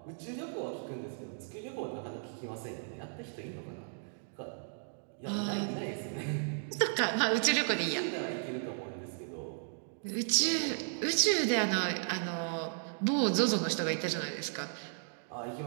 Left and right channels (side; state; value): left; silent; digital silence